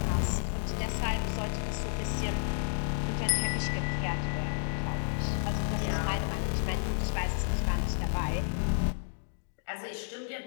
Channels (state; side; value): silent; right; digital silence